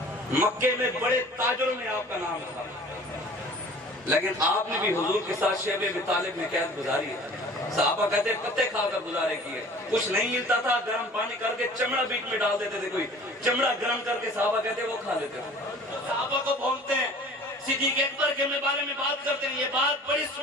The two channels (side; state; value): both; normal; correlation 0.46